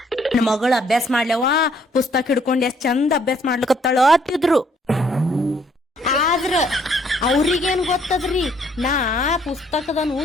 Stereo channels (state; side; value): normal; both; correlation 0.65